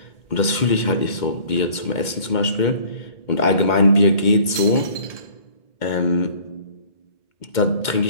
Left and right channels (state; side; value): late; right; 2.2 ms